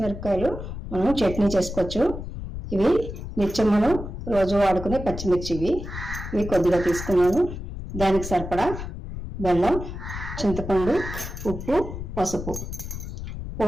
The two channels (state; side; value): noise; left; rumble, 8 dB below the sound